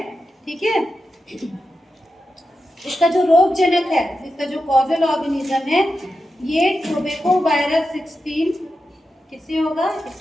ठीक है। इसका जो रोग जनक है, इसका जो कॉजल ऑर्गेनिज्म है, ये टोबैको वायरस 16 किससे होगा?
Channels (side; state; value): both; normal; correlation 0.90